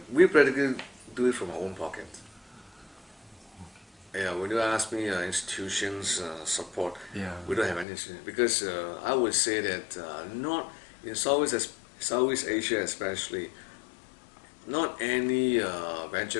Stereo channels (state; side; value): drops out; right; at 7.9 s